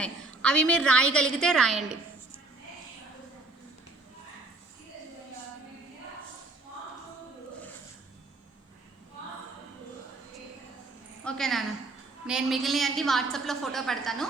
అవి మీరు రాయగలిగితే రాయండి. ఓకే నాన్న, నేను మిగిలిన అన్ని వాట్సాప్లో ఫోటో పెడతాను,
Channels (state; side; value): quieter; left; 3.2 dB